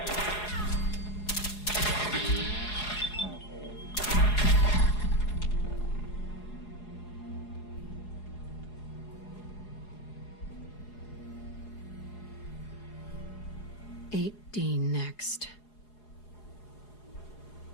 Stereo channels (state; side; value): late; right; 4.8 ms